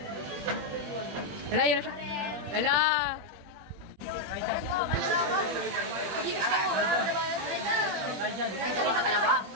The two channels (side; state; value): left; late; 21 ms